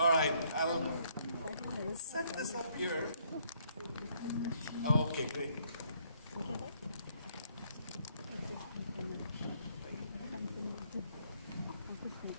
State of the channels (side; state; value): both; inverted; correlation -0.68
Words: right. I'll set this up here. Okay, great.